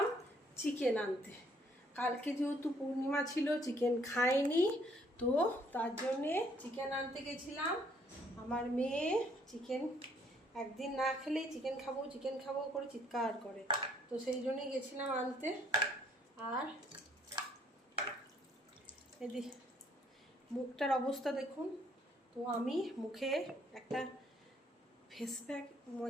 চিকেন আনতে। কালকে যেহেতু পূর্ণিমা ছিল, চিকেন খাইনি, তো তার জন্যে চিকেন আনতে গেছিলাম। আমার মেয়ে চিকেন একদিন না খেলেই চিকেন খাবো চিকেন খাবো করে চিৎকার করে, তো সেই জন্যই গেছিলাম আনতে। আর এদি মুখটার অবস্থা দেখুন। তো আমি মুখে একটা ফেস প্যাক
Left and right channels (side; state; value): both; normal; correlation 0.65